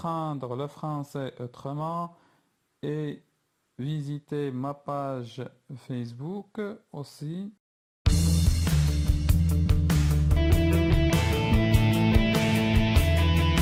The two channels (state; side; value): identical; both; correlation 1.00